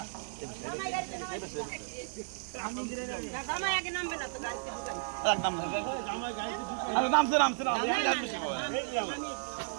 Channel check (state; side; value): silent; left; digital silence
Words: জামাই আগে নামবে না তো গাড়িতে ঢুকাই। একদম আরে নামছে নামছে না